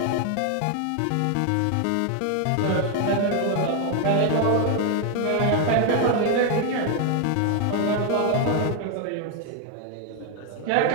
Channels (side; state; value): both; different; correlation 0.00